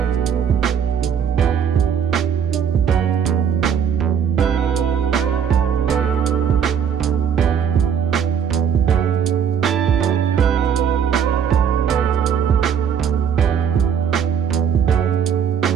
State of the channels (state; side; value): quieter; left; 7.9 dB